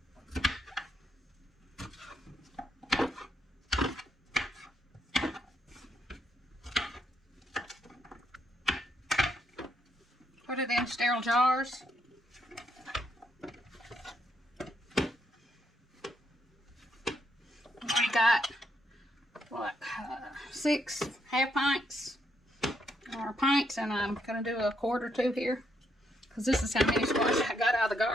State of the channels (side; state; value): both; normal; correlation 0.76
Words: Put it in sterile jars. We got, what, 6 half pints or pints, and I'm going to do a quart or 2 here because this is how many squash I got out of the